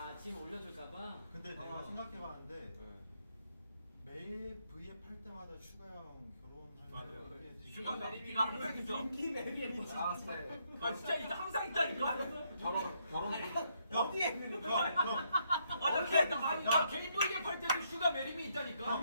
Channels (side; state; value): both; inverted; correlation -0.74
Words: 지금 올려줄까봐. 근데 내가 생각해봤는데 매일 V앱 할 때마다 슈가 형 결혼할 때 슈가 메리미가 항상 있어. 인기 매력이 아 네. 아 진짜 있어 항상 있다니까. 결혼. 어디에 있는 거야? 나 개인 보이게 팔 때도 슈가 메리미 있다니까.